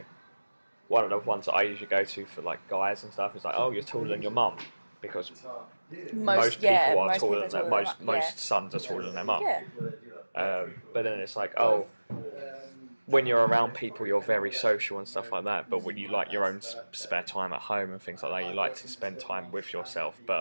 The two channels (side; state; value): both; inverted; correlation -1.00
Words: one of the ones that I usually go to for like guys and stuff is like, oh, you're taller than your mum, because most people are taller than their most sons are taller than their mum. Yeah. But then it's like, oh, when you're around people, you're very social and stuff like that. But when you like your own spare time at home and things like that, you like to spend time with yourself.